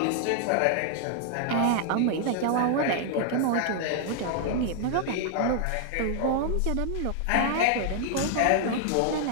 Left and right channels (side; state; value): both; different; correlation 0.00